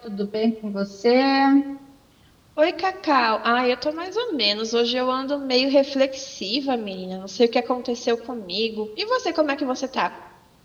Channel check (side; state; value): both; identical; correlation 1.00